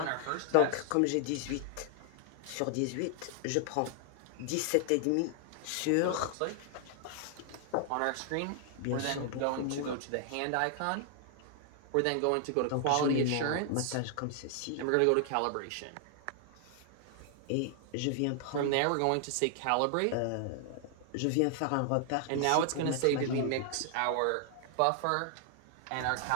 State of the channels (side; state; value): both; different; correlation 0.00